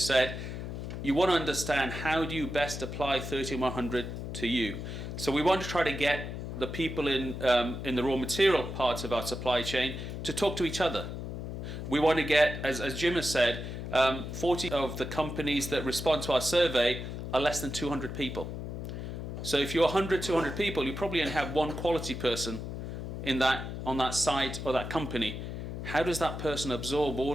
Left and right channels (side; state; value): left; noise; hum, 6 dB below the sound